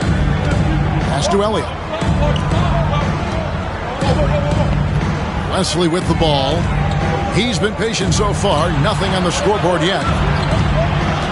Pass to Elliott. Wesley with the ball. He's been patient so far. Nothing on the scoreboard yet.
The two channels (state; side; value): identical; both; correlation 1.00